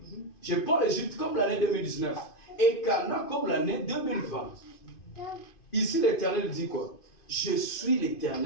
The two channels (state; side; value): late; right; 2.5 ms